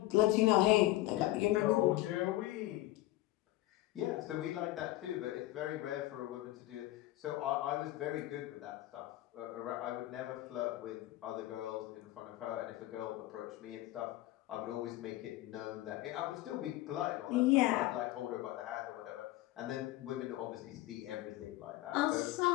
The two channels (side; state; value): right; quieter; 16.7 dB